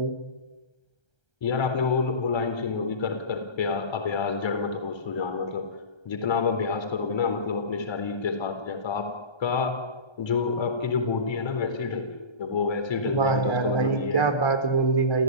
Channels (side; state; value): right; late; 1.3 ms